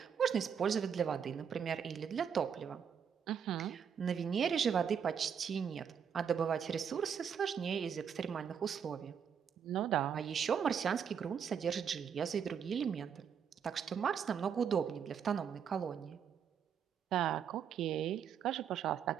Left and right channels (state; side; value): quieter; left; 7.5 dB